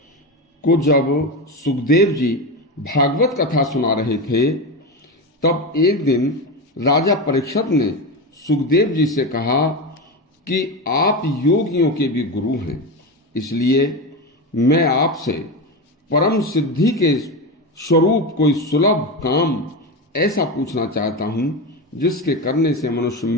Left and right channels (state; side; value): normal; both; correlation 0.18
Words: को जब सुखदेव जी भागवत कथा सुना रहे थे, तब एक दिन राजा परीक्षित ने सुखदेव जी से कहा कि आप योगियों के भी गुरु हैं, इसलिए मैं आपसे परम सिद्धि के स्वरूप कोई सुलभ काम ऐसा पूछना चाहता हूं जिसके करने से मनुष्य